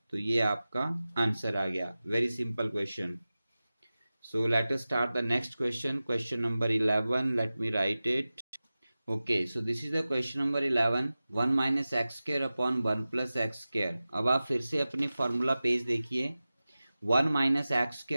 तो ये आपका आंसर आ गया। Very simple question. So let us start the next question. Question number 11. Let me write it. Okay, so this is the question number 11. 1 minus x square upon 1 plus x square. अब आप फिर से अपनी formula page देखिए। 1 minus x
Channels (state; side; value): inverted; both; correlation -0.96